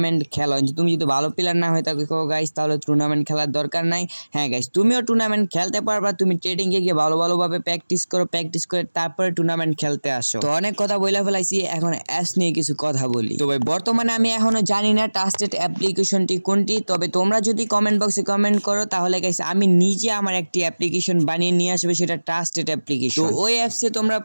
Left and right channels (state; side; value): inverted; both; correlation -1.00